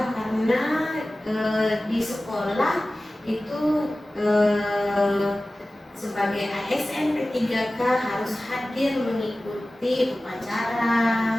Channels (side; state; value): both; normal; correlation 0.97